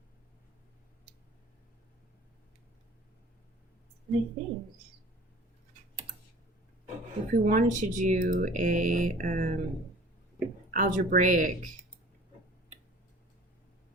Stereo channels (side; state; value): both; normal; correlation 0.46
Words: And I think if we wanted to do a algebraic,